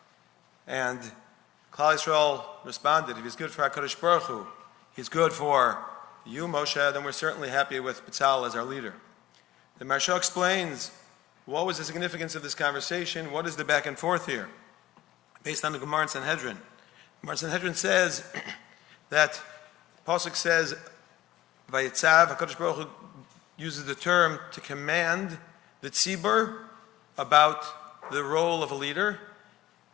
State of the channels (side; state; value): right; quieter; 15.0 dB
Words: And Klal Yisrael responded, if he's good for HaKadosh Baruch Hu, he's good for you, Moshe, then we're certainly happy with B'Tzalel as our leader. The Maharsha explains, what was the significance of this conversation? What is the back and forth here? Based on the Gemara in Sanhedrin. Gemara in Sanhedrin says that, Pasuk says, Vayitzav, HaKadosh Baruch Hu uses the term to command the tzibur about the role of a leader,